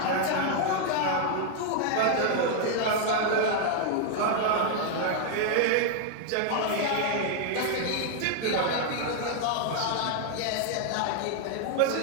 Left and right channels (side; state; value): both; different; correlation 0.00